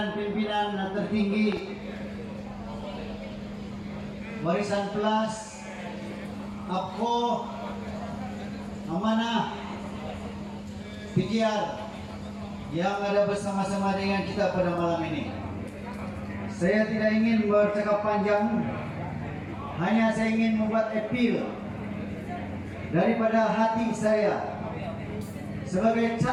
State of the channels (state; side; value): identical; both; correlation 1.00